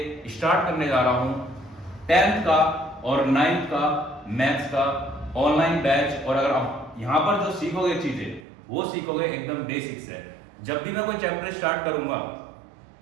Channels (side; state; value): left; drops out; at 8.4 s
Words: स्टार्ट करने जा रहा हूं 10th का और 9th का मैथ्स का ऑनलाइन बैच। और अगर आप यहां पर जो सीखोगे चीजें वो सीखोगे एकदम बेसिक से। जब भी मैं कोई चैप्टर स्टार्ट करूंगा